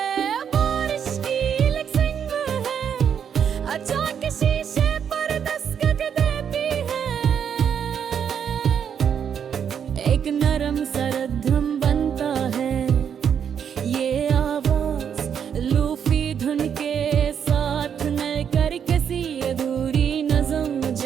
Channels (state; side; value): quieter; left; 8.0 dB